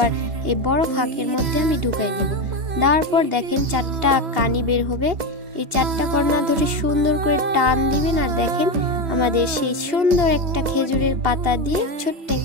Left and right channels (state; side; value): late; left; 2.8 ms